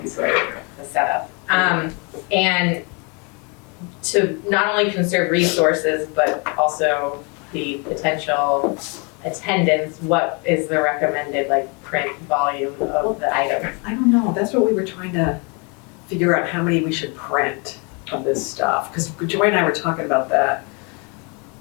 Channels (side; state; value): right; quieter; 32.6 dB